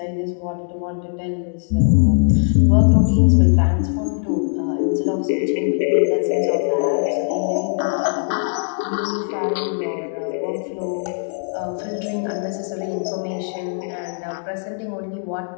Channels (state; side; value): silent; right; digital silence